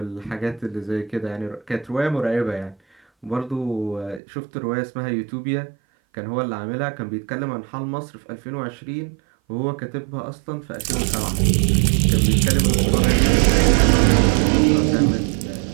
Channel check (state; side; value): drops out; left; at 4.2 s